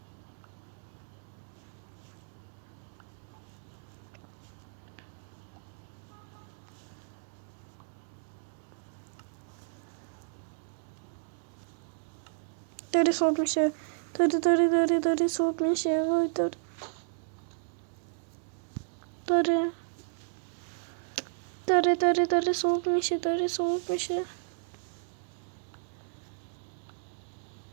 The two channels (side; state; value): left; silent; digital silence